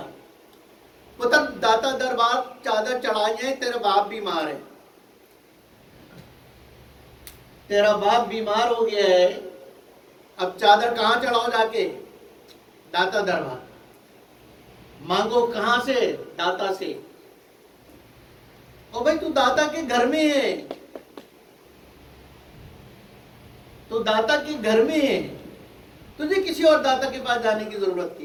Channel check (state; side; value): identical; both; correlation 1.00